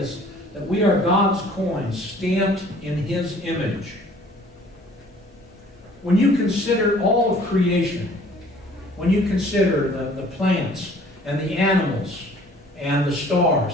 that we are God's coins, stamped in His image. When you consider all of creation, when you consider the plants and the animals and the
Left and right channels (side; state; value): both; normal; correlation 0.54